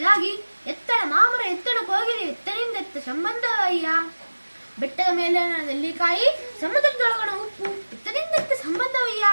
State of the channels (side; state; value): both; inverted; correlation -1.00